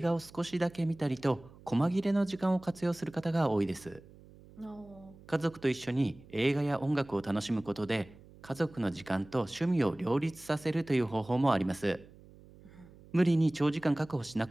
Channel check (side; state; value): right; noise; hum, 22 dB below the sound